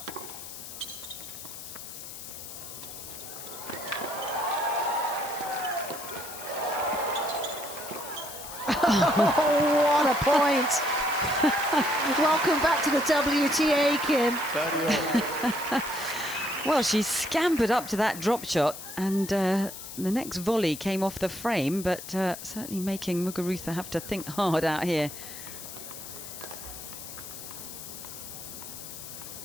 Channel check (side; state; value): left; noise; hiss, 11 dB below the sound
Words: Oh, what a point. Welcome back to the WTA, Kim. Well, she scampered up to that drop shot, and the next volley came off the frame, but certainly making Muguruza have to think hard out here.